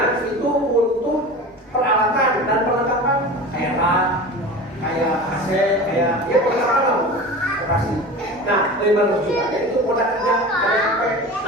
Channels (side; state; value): both; normal; correlation 0.33